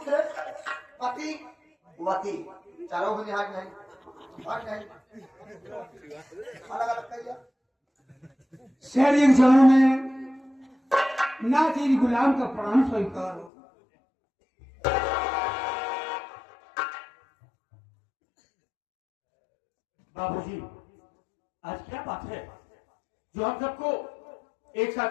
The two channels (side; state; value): right; drops out; at 13.5 s